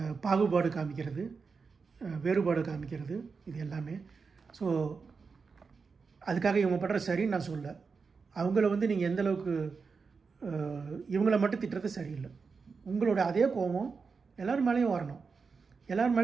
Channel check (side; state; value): left; quieter; 5.0 dB